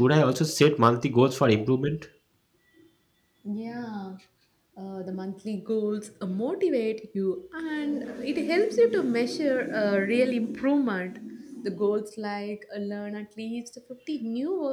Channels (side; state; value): both; identical; correlation 1.00